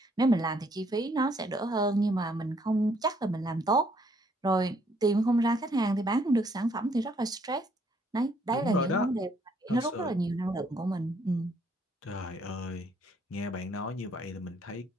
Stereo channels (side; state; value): both; normal; correlation 0.67